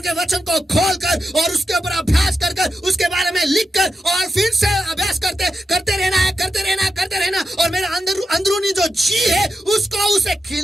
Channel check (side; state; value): both; normal; correlation 0.87